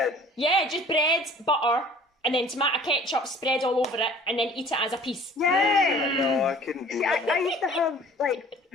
Yeah, just bread, butter, and then tomato ketchup spread all over it, and then eat it as a piece. Yeah. No, I couldn't do that. I used to have, like,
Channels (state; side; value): normal; both; correlation 0.50